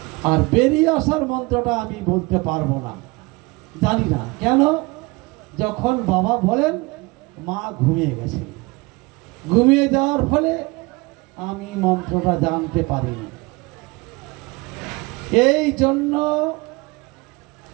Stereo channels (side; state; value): left; quieter; 24.7 dB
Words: আর বেরিয়ে আসার মন্ত্রটা আমি বলতে পারবো না, জানি না। কেন? যখন বাবা বলেন মা ঘুমিয়ে গেছেন, ঘুমিয়ে যাওয়ার ফলে আমি মন্ত্রটা জানতে পারিনি। এই জন্য